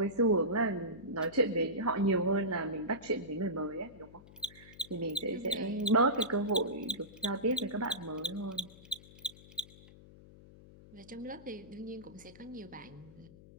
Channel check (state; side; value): noise; left; hum, 20 dB below the sound